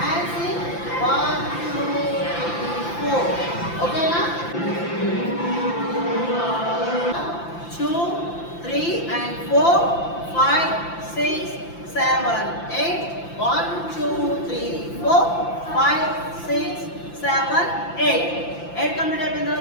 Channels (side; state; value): right; late; 5.9 ms